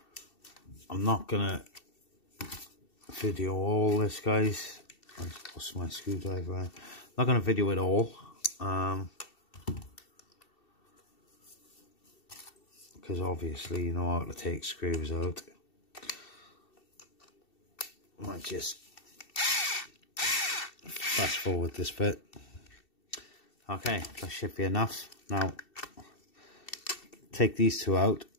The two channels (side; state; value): right; late; 2.7 ms